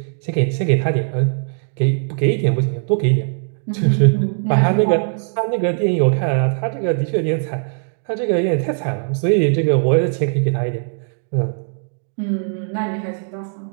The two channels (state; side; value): silent; left; digital silence